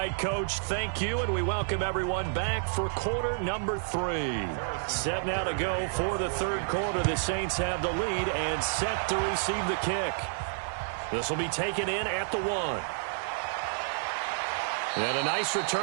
Coach, thank you, and we welcome everyone back for quarter number 3. Set now to go for the third quarter. The Saints have the lead and set to receive the kick. This will be taken in at the 1. And a nice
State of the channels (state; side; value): silent; left; 56 dB below the other